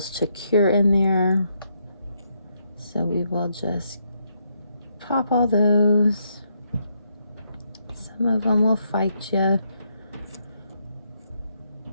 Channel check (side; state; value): both; inverted; correlation -0.77